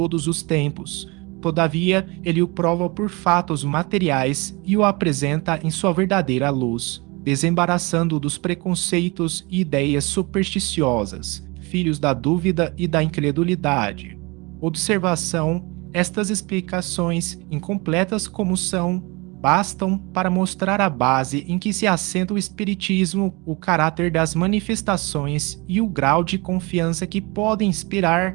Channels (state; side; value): quieter; left; 26.4 dB